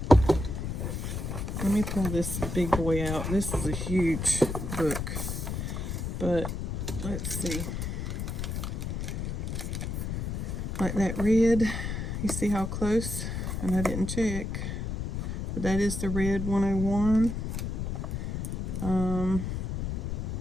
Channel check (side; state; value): left; noise; rumble, 3 dB below the sound